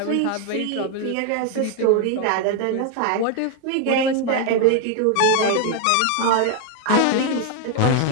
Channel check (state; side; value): different; both; correlation 0.01